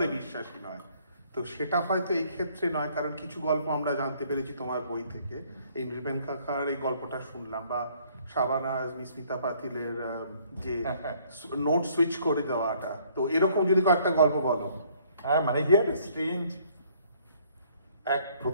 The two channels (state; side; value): inverted; both; correlation -0.62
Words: বিশ্বাসী নয়। তো সেটা হয়তো এই ক্ষেত্রে নয়, কারণ কিছু গল্প আমরা জানতে পেরেছি তোমার বই থেকে। এই নৃপেন কাকার এই গল্পটা শুনলাম, বা শাবানাজ, মিস্মিতা পাতিলের যে নোট সুইচ করে দেওয়াটা, তো এরকম যদি কয়েকটা গল্প বলো। হ্যাঁ, মানে হিয়ার স্ট্রেঞ্জ,